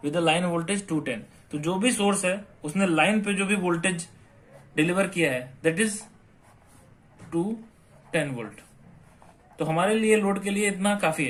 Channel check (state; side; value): identical; both; correlation 1.00